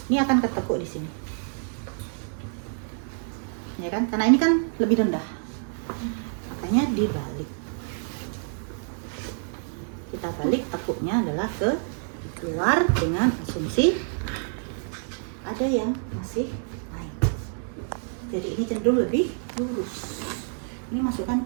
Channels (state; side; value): silent; left; 60 dB below the other